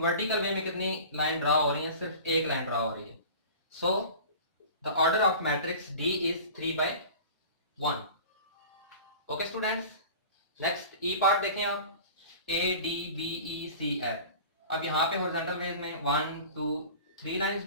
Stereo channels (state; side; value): inverted; both; correlation -0.39